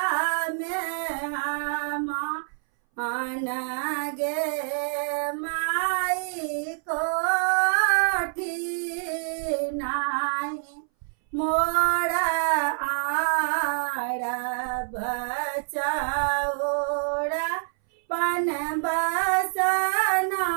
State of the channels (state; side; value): silent; left; 61 dB below the other